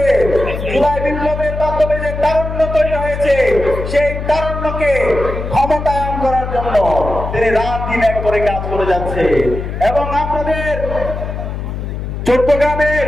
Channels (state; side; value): noise; left; hum, 6 dB below the sound